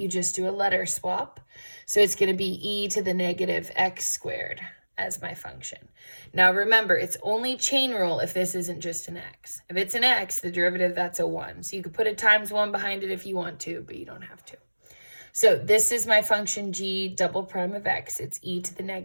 just do a letter swap. So it's going to be e to the negative x squared as my function. Now remember, it's only chain rule if this isn't just an x. If it's an x, the derivative, that's a 1. So you could put a times 1 behind it if you want to, but you don't have to. So this is my function g double prime of x. It's e to the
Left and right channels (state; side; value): inverted; both; correlation -1.00